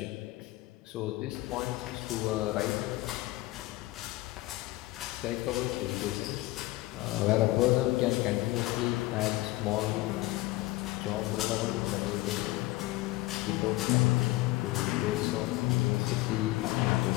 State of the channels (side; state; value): right; quieter; 18.9 dB